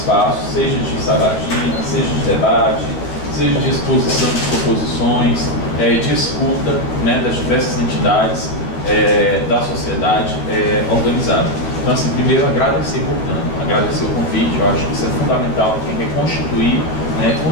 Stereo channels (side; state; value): right; late; 12 ms